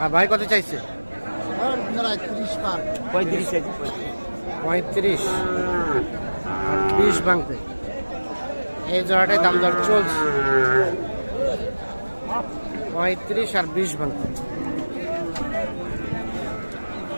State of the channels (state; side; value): inverted; both; correlation -1.00